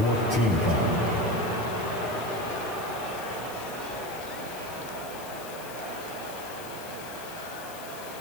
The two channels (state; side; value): noise; left; hiss, 14 dB below the sound